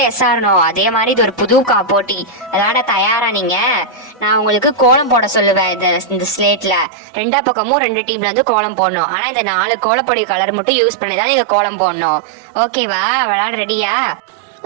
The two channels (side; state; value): left; drops out; at 6.9 s